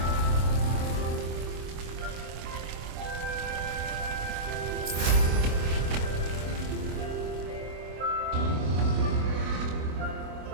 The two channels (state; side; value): late; left; 25 ms